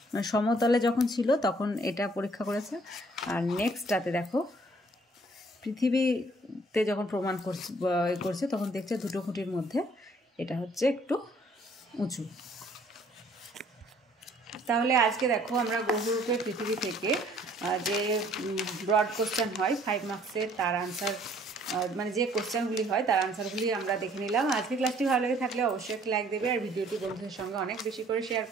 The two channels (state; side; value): normal; both; correlation 0.60